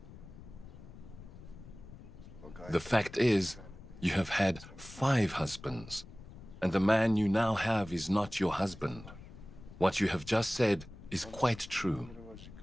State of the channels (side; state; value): left; noise; rumble, 16 dB below the sound